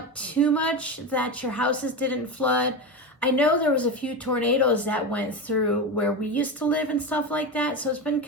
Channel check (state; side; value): normal; both; correlation 0.19